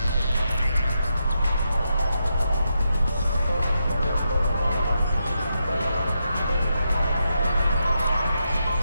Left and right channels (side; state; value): both; inverted; correlation -0.85